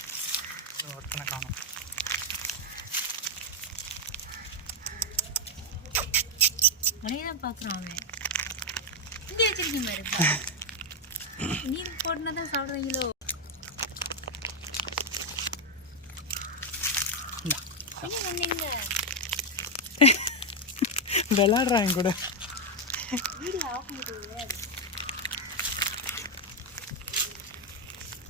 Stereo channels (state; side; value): normal; both; correlation 0.03